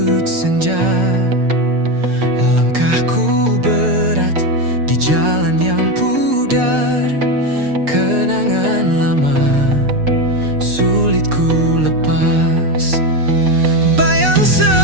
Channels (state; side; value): late; left; 6.7 ms